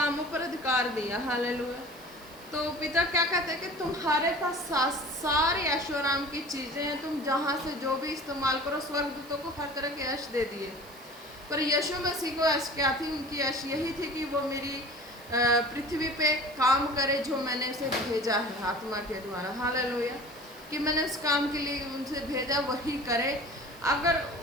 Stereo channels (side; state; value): right; noise; hiss, 22 dB below the sound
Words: पर अधिकार दिया, हालेलुया। तो पिता क्या कहते हैं कि तुम्हारे पास सारी ऐशोआराम की चीज़ें हैं, तुम जहाँ से जो भी इस्तेमाल करो, स्वर्गदूतों को हर तरह के ऐश दे दिए, पर यीशु मसीह को ऐश क्या थी, उनकी ऐश यही थी कि वो मेरी पृथ्वी पे काम करे जो मैंने उसे भेजा है आत्मा के द्वारा, हालेलुया, कि मैंने उस काम के लिए उनसे भेजा वही करे। अगर